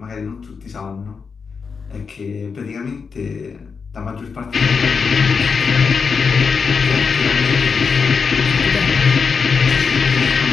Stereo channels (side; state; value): right; quieter; 5.5 dB